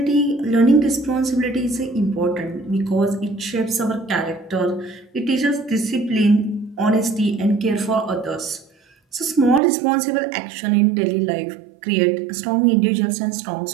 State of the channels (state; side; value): drops out; left; at 9.6 s